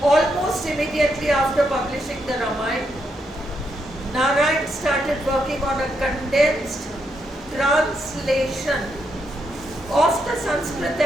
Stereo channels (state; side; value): normal; both; correlation 0.80